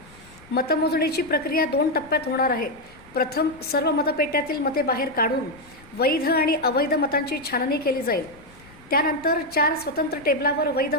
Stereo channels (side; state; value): left; noise; rumble, 24 dB below the sound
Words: मतमोजणीची प्रक्रिया 2 टप्प्यात होणार आहे। प्रथम सर्व मतपेट्यातील मते बाहेर काढून वैध आणि अवैध मतांची छाननी केली जाईल। त्यानंतर 4 स्वतंत्र टेबलावर वैध